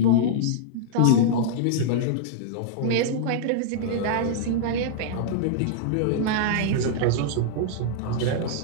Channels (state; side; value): different; both; correlation -0.02